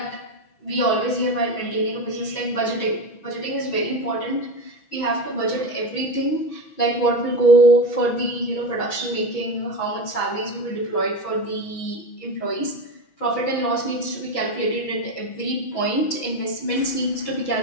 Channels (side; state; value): right; late; 6.1 ms